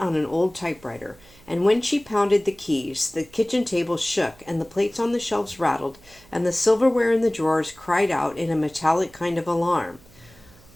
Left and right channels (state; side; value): noise; right; hum, 26 dB below the sound